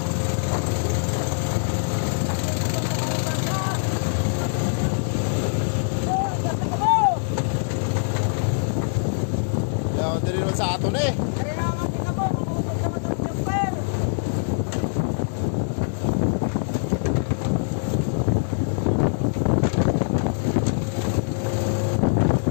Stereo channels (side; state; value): right; silent; digital silence